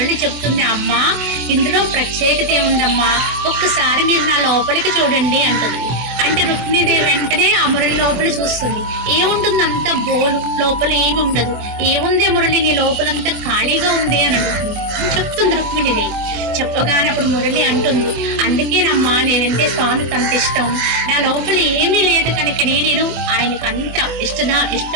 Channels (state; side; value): late; left; 24 ms